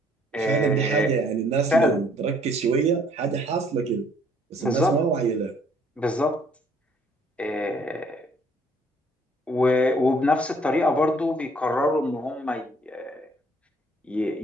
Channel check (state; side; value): normal; both; correlation 0.62